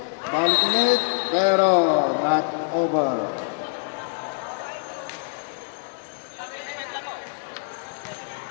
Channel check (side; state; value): right; silent; 62 dB below the other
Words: ulit, pero not over.